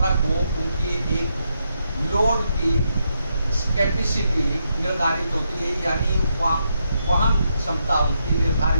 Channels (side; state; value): both; inverted; correlation -0.81